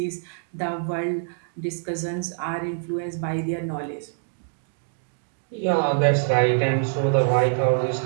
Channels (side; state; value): left; silent; digital silence